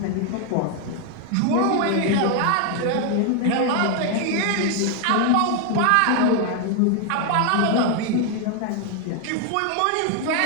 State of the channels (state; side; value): different; both; correlation 0.01